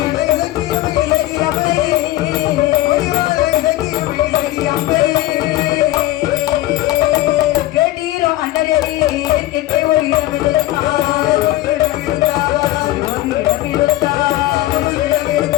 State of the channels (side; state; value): right; quieter; 16.0 dB